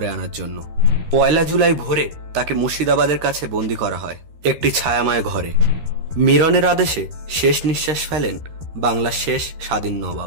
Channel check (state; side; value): late; left; 13 ms